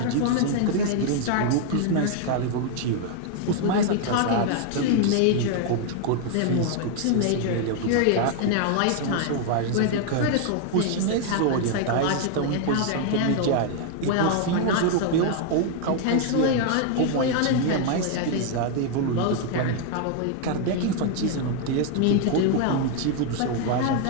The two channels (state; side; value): different; both; correlation 0.00